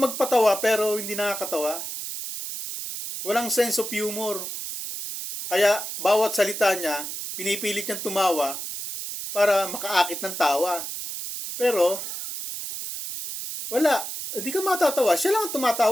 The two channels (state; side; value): noise; right; hiss, 6 dB below the sound